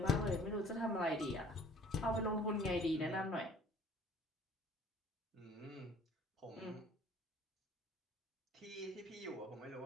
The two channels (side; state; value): both; normal; correlation 0.52